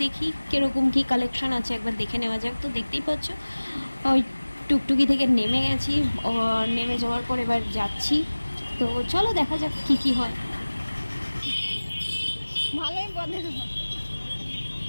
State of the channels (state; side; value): inverted; both; correlation -1.00